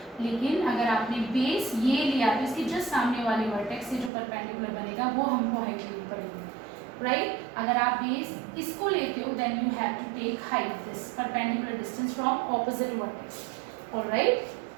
लेकिन अगर आपने बेस ये लिया तो इसके जस्ट सामने वाले वर्टेक्स से जो परपेंडिकुलर बनेगा वो हमको हाइट लेनी पड़ेगी. राइट, अगर आप बेस इसको लेते हो then you have to take height, this perpendicular distance from opposite vertex. Alright,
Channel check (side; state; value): left; drops out; at 4.1 s